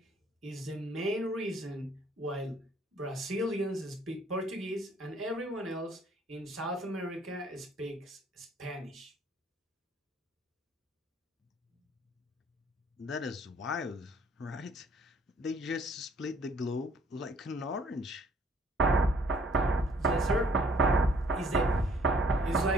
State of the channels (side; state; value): both; normal; correlation 0.60